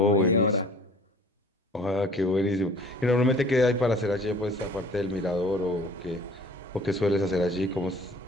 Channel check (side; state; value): both; normal; correlation 0.50